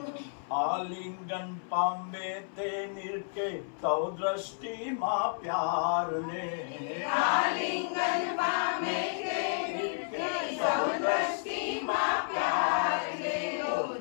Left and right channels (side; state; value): right; silent; 57 dB below the other